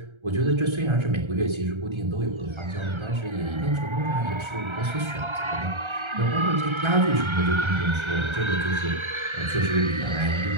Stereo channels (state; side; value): late; left; 1.3 ms